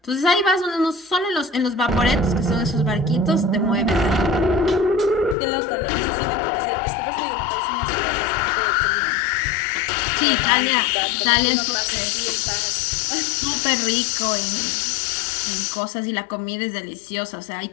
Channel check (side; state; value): right; drops out; at 5.4 s